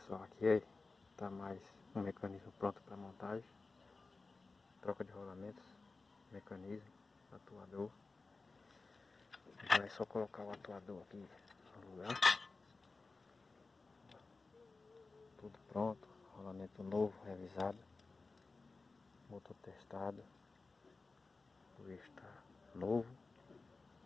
aqui está mais um mecanismo pronto para montagem. Troca de rolamentos, mecanismo, atuador. Agora é só colocar o atuador aqui no lugar. Tudo pronto, rolamento novo, revisado, motor testado, o eixo está novo.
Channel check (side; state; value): right; quieter; 3.8 dB